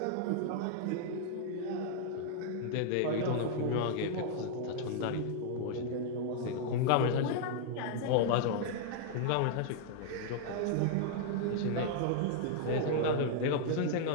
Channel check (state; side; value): different; both; correlation -0.01